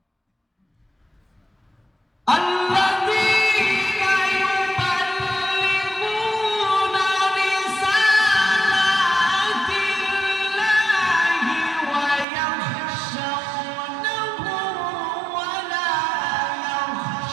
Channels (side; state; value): left; drops out; at 12.2 s